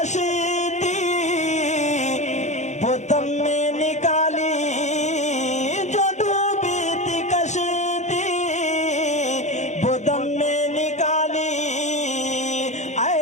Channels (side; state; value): right; late; 0.34 ms